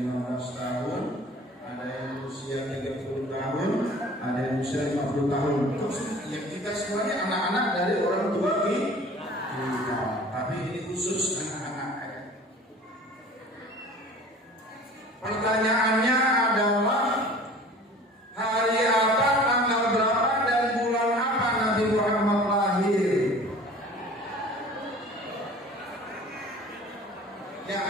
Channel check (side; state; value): both; normal; correlation 0.45